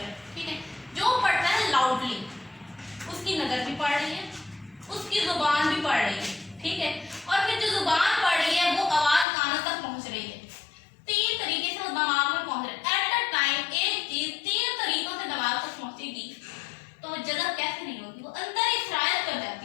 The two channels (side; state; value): right; drops out; at 9.2 s